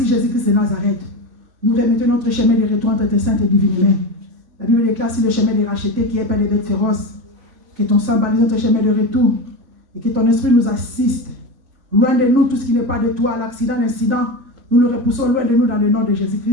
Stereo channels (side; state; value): left; late; 3.4 ms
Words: Jésus-Christ de Nazareth. Nous remettons notre chemin de retour entre tes saintes et divines mains. La Bible déclare sur le chemin des rachetés qui est plein de bêtes féroces. Que ton sang balise notre chemin de retour et que ton esprit nous assiste. Loin de nous tout ce qui n'est pas de toi, l'accident, l'incident, nous le repoussons loin de nous dans le nom de